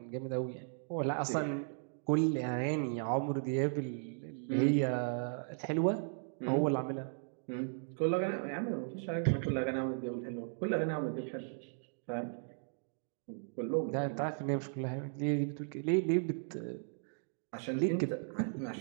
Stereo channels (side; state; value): left; silent; digital silence